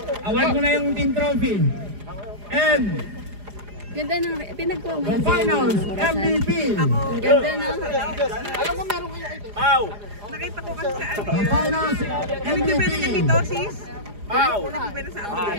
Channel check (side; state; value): left; late; 4.9 ms